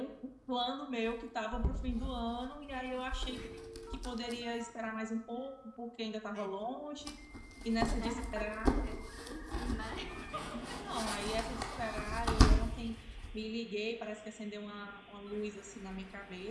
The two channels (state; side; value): identical; both; correlation 1.00